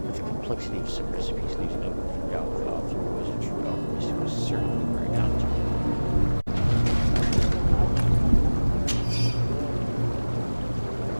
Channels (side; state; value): both; inverted; correlation -1.00